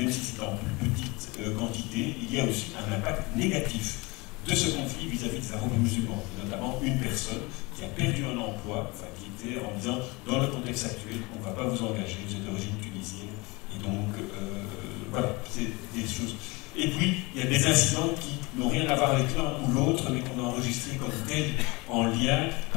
si c'est en plus petite quantité, il y a aussi un impact négatif de ce conflit vis-à-vis des arabo-musulmans. Notamment une personne qui a perdu un emploi, enfin qui était en disant, dans le contexte actuel, on ne va pas vous engager, vous êtes d'origine tunisienne. Et donc, voilà, c'est des choses. Et puis, il y a des incidents qui n'ont rien à voir avec l'un ou l'autre, mais qu'on a enregistrés comme tels en lien,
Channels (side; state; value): right; quieter; 25.2 dB